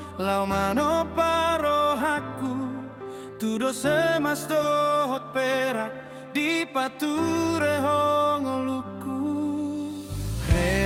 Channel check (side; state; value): both; identical; correlation 1.00